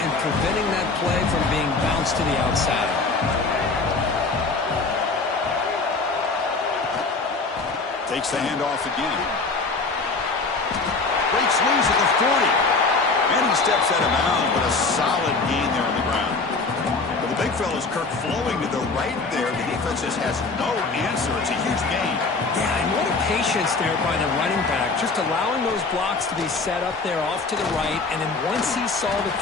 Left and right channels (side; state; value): right; quieter; 3.9 dB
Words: preventing that play from being bounced to the outside. Takes the handoff again. Breaks loose at the 40. And he steps out of bounds, but a solid gain there on the ground. But the big fella's Kirk flowing to the right there. The defense just has no answer. It's a huge gain. Yeah, and what a patience there by the running back, just allowing those blocks to be set up there off to the right, and then once he saw the